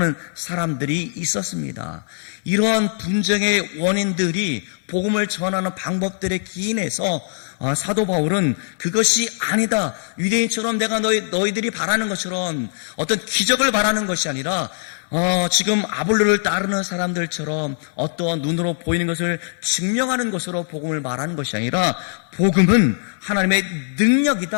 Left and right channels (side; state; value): right; silent; digital silence